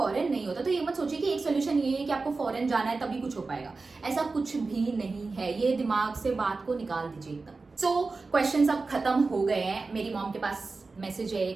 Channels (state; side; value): quieter; left; 3.9 dB